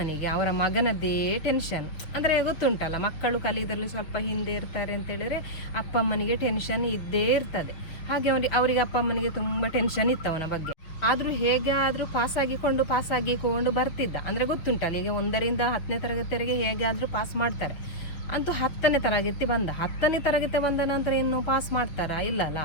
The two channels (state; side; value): late; right; 6.6 ms